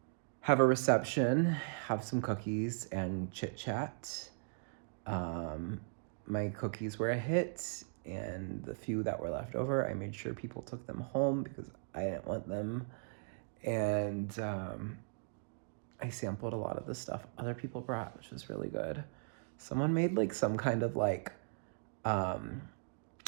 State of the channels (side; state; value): left; silent; digital silence